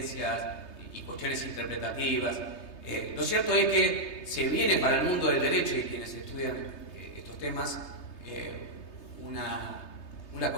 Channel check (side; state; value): right; late; 3.3 ms